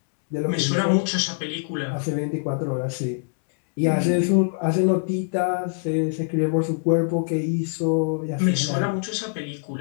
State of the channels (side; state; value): right; silent; digital silence